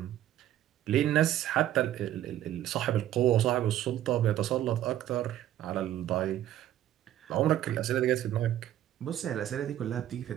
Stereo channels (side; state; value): left; quieter; 12.5 dB